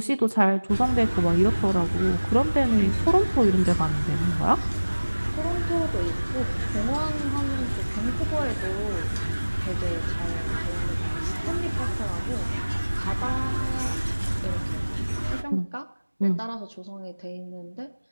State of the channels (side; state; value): both; inverted; correlation -1.00